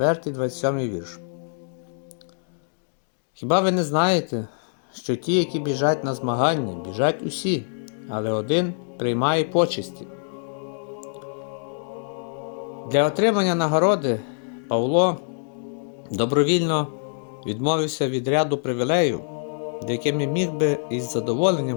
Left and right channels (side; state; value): right; silent; digital silence